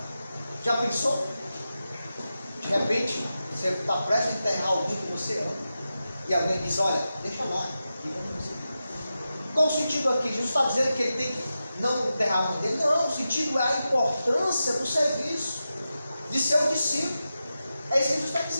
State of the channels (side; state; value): both; inverted; correlation -0.91